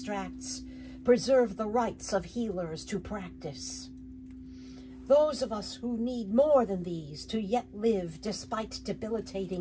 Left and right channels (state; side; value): identical; both; correlation 1.00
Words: Preserve the rights of healers to practice. Those of us who need more than these to yet live despite